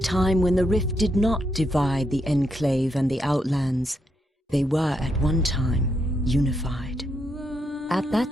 when the rift did not divide the Enclave and the Outlands, they were at one time unified. At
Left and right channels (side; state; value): both; normal; correlation 0.79